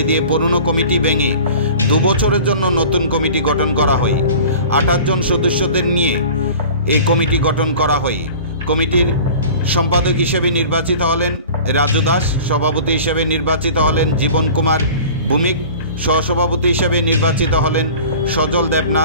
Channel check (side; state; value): both; inverted; correlation -0.42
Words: দিয়ে পুরনো কমিটি ভেঙে 2 বছরের জন্য নতুন কমিটি গঠন করা হয়। 28 জন সদস্যদের নিয়ে এই কমিটি গঠন করা হয়। কমিটির সম্পাদক হিসেবে নির্বাচিত হলেন রাজু দাস, সভাপতি হিসেবে নির্বাচিত হলেন জীবন কুমার ভৌমিক, সহসভাপতি হিসেবে নির্বাচিত হলেন সজল